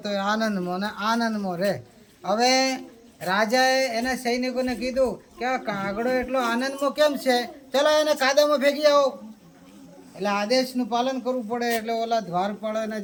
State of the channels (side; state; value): both; identical; correlation 1.00